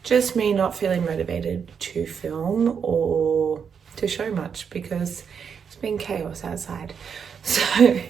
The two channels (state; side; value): quieter; left; 6.8 dB